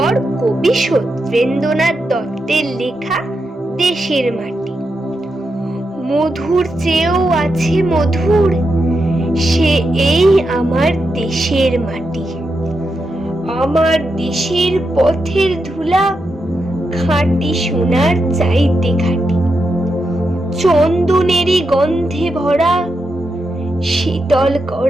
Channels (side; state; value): both; normal; correlation 0.86